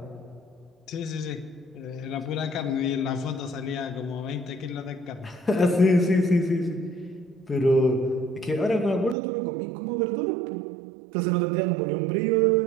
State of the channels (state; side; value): drops out; left; at 9.2 s